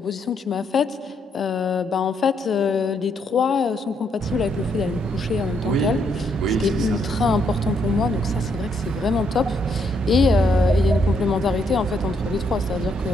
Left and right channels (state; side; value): normal; both; correlation 0.74